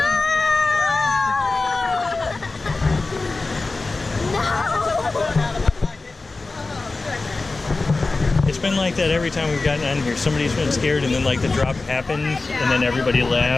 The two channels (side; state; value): right; quieter; 3.6 dB